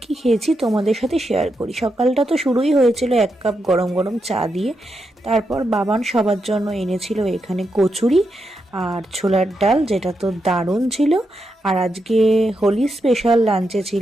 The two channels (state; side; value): normal; both; correlation 0.84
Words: কি খেয়েছি তোমাদের সাথে শেয়ার করি। সকালটা তো শুরুই হয়েছিল 1 কাপ গরম গরম চা দিয়ে। তারপর বাবান সবার জন্য এনেছিল এখানে কচুরি আর ছোলার ডাল, যেটা তো দারুণ ছিল। আর আজকে হোলি স্পেশাল লাঞ্চে